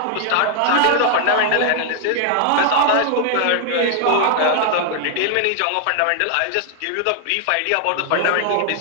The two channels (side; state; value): both; different; correlation 0.00